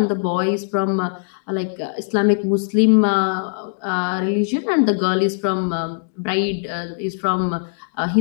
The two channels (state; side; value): silent; right; digital silence